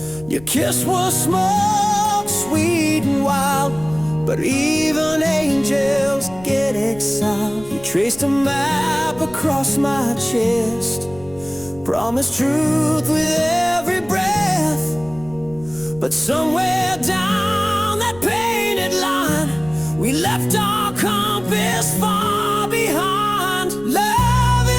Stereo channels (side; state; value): left; noise; rumble, 20 dB below the sound